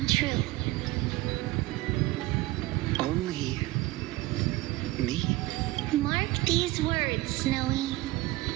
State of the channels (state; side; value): quieter; left; 18.7 dB